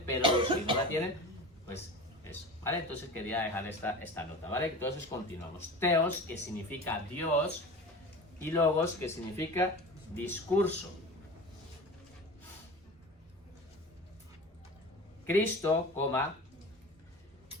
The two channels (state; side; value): normal; both; correlation 0.33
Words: pero los que no la tienen, pues eso, ¿vale? Entonces quería dejar esta nota, ¿vale? Entonces continuamos. Theos, que significa Dios, y logos, que significa discurso. Cristo,